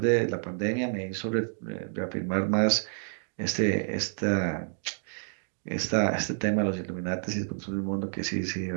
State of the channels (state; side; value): silent; left; digital silence